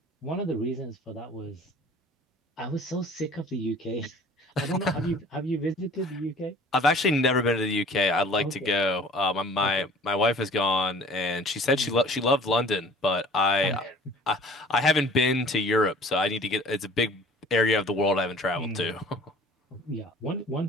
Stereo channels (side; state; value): both; normal; correlation 0.48